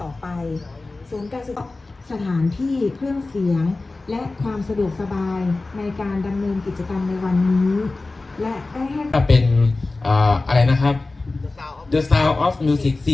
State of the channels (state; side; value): quieter; right; 3.3 dB